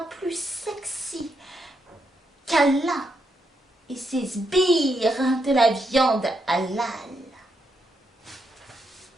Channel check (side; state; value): both; normal; correlation 0.80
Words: plus sexy qu'Allah et ses sbires de la viande halal.